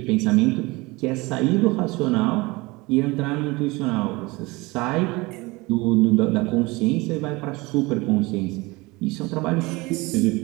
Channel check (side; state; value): left; quieter; 23.3 dB